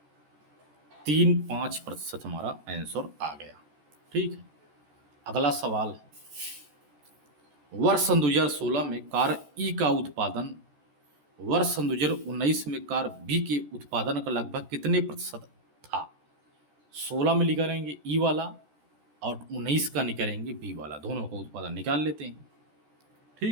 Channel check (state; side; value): late; left; 14 ms